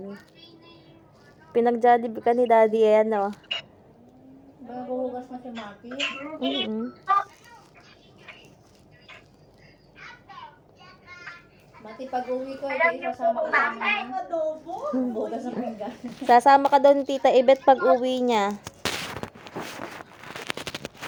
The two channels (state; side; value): identical; both; correlation 1.00